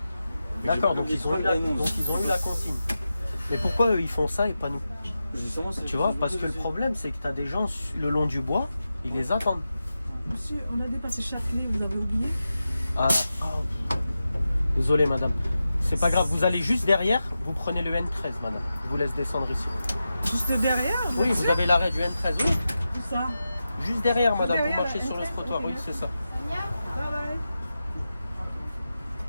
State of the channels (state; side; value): inverted; both; correlation -0.91